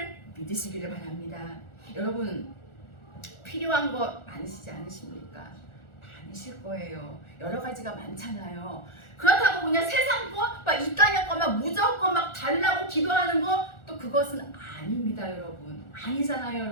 믿으시기를 바랍니다. 여러분, 필요한 거 많으시지 않으십니까? 많으실 거예요. 여러 가지가 많잖아요. 그렇다고 그냥 세상 거, 이 땅의 거만 무조건 달라고 기도하는 거, 또 그것은 아닙니다, 여러분. 아니잖아요,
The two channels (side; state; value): right; late; 1.4 ms